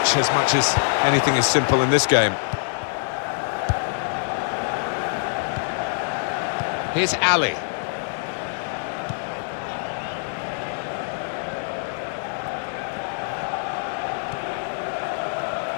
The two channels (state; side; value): silent; right; digital silence